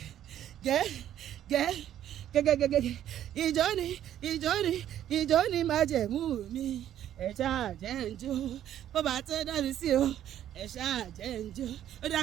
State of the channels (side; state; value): left; quieter; 11.2 dB